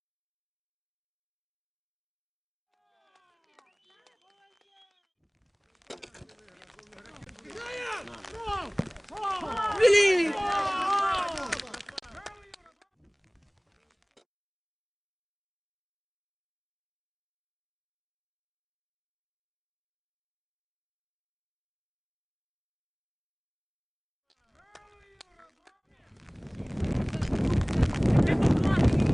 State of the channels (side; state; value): both; identical; correlation 1.00